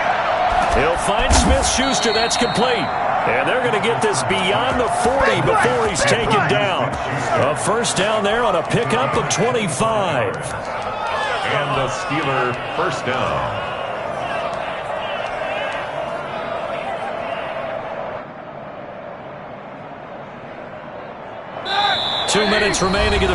He'll find Smith-Schuster. That's complete. And they're going to get this beyond the 40 before he's taken down. A first down there on a pickup of 25. And the Steeler first down. 2 minutes remaining in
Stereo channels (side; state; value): both; identical; correlation 1.00